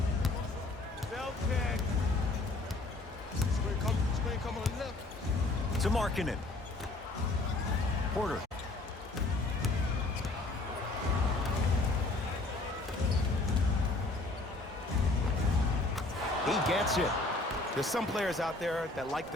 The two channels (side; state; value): right; quieter; 3.0 dB